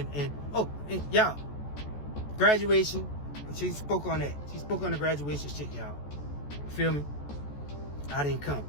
y'all, graduation, she spoke on that. She spoke on the graduation shit, y'all. Feel me? I didn't come.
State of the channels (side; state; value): right; late; 14 ms